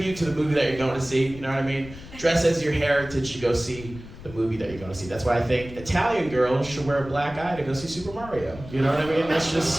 to the movie that you're going to see, you know what I mean? Dress as your heritage to go see the movie that you're going to see. That's why I think Italian girls should wear a black eye to go see Super Mario, you know what I mean? That's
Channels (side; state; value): left; noise; rumble, 15 dB below the sound